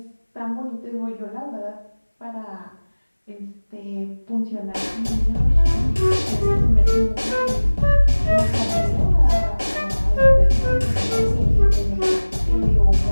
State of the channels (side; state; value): both; inverted; correlation -1.00